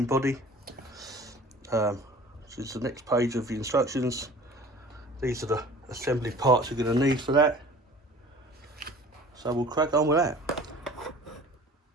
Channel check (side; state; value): both; normal; correlation 0.45